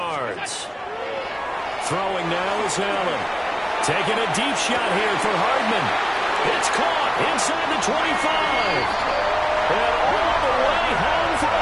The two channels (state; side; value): identical; both; correlation 1.00